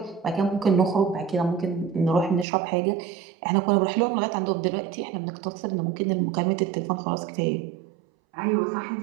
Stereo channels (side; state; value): left; drops out; at 2.5 s